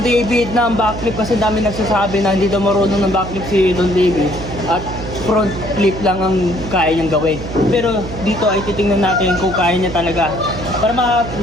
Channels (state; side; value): noise; right; hum, 9 dB below the sound